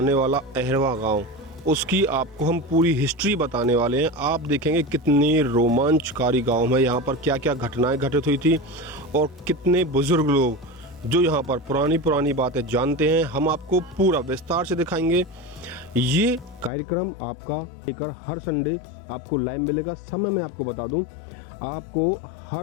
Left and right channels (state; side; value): drops out; right; at 16.7 s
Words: वाला अहरवा गांव, उसकी आपको हम पूरी हिस्ट्री बताने वाले हैं। आप देखेंगे कितनी रोमांचकारी गांव है, यहाँ पर क्या क्या घटनाएं घटित हुई थी और कितने बुज़ुर्ग लोग जो यहाँ पर पुरानी बातें जानते हैं, हम आपको पूरा विस्तार से दिखाएंगे। ये कार्यक्रम आपका लेकर हर संडे आपको लाइव मिलेगा। समय मैं आपको बता दूं, आपको